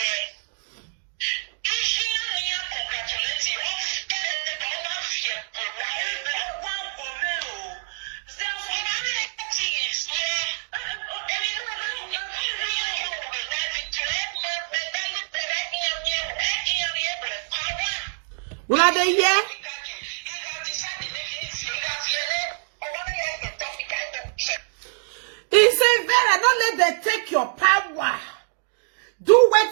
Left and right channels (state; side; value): silent; left; digital silence